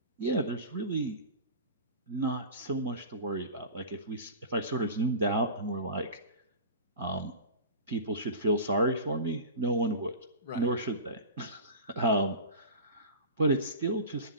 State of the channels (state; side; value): inverted; both; correlation -0.32